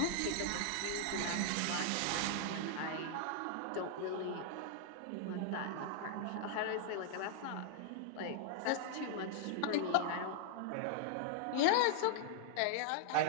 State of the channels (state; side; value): different; both; correlation -0.01